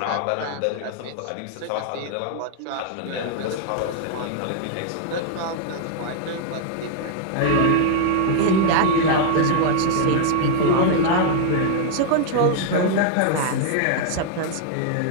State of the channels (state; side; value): different; both; correlation -0.01